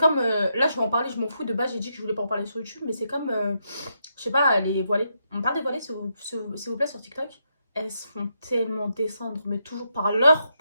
là, je vais en parler, je m'en fous. De base, j'ai dit que je voulais pas en parler sur YouTube, mais c'est comme, je sais pas, les voilées. On parle des voilées, s'il vous plaît, sur TikTok. Elles se font tellement descendre, mais toujours par leur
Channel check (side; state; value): both; inverted; correlation -0.80